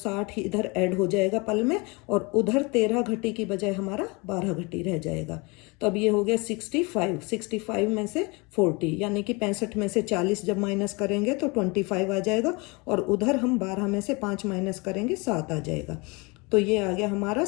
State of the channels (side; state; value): right; quieter; 27.8 dB